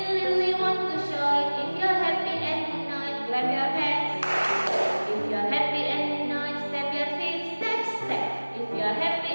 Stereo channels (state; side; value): inverted; both; correlation -1.00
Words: really want to show it. If you're happy and unite, clap your hands. If you're happy and unite, step your feet, step, step. If you're happy